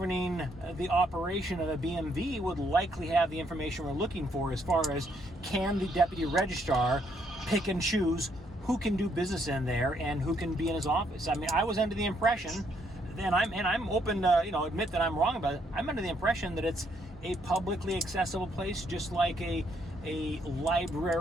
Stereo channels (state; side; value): normal; both; correlation 0.72